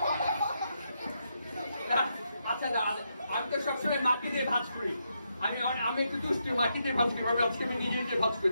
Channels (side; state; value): both; inverted; correlation -0.81